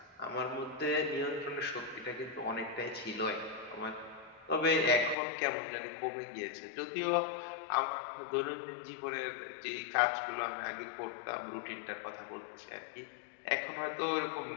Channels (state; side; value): drops out; right; at 5.2 s